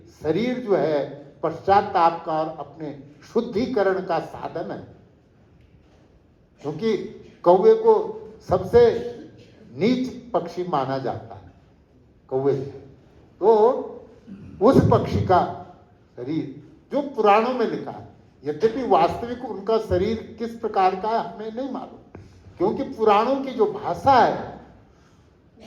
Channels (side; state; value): both; identical; correlation 1.00